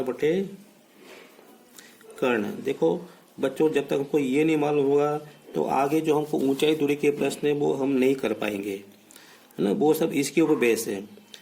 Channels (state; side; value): identical; both; correlation 1.00